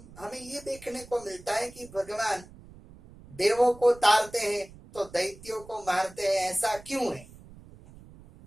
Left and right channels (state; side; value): noise; right; rumble, 20 dB below the sound